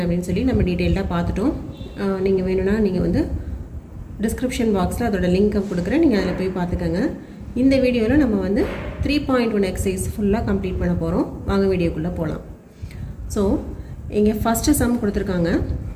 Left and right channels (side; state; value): both; identical; correlation 1.00